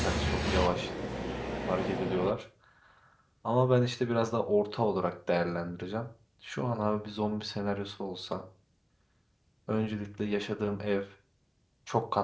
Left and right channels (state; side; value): identical; both; correlation 1.00